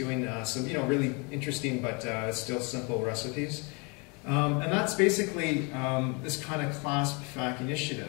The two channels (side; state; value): right; quieter; 31.4 dB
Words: some, you know, really interesting but still simple recipes. And that's basically this kind of Clasp